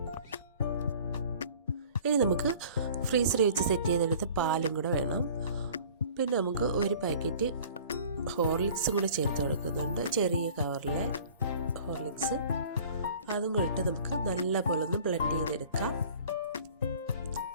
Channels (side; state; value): both; inverted; correlation -0.48